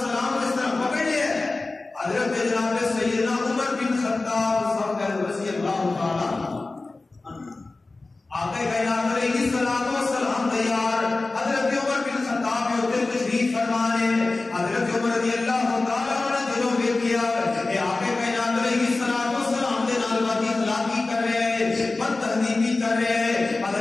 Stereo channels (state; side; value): quieter; right; 3.4 dB